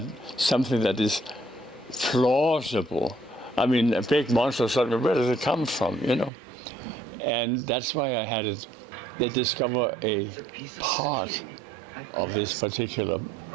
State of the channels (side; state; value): left; drops out; at 6.3 s